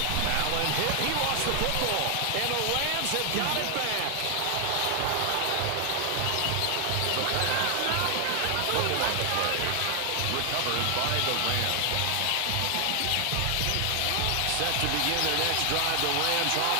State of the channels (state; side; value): different; both; correlation 0.00